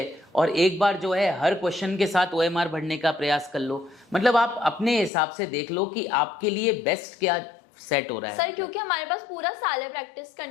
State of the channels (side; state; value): right; drops out; at 5.1 s